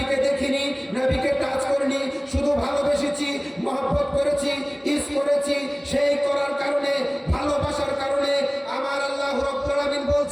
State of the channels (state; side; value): identical; both; correlation 1.00